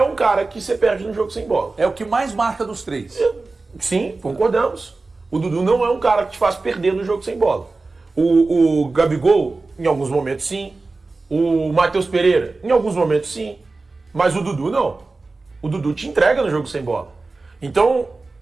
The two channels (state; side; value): quieter; left; 3.6 dB